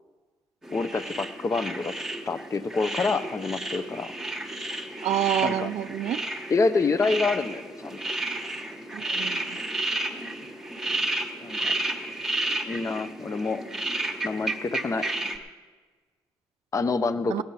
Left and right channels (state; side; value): normal; both; correlation 0.71